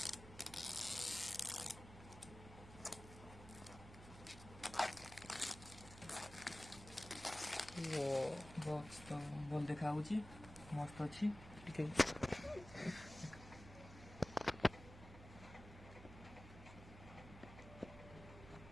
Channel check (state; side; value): noise; right; hum, 15 dB below the sound